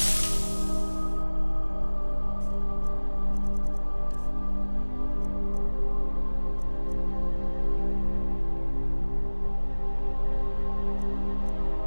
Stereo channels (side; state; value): both; inverted; correlation -1.00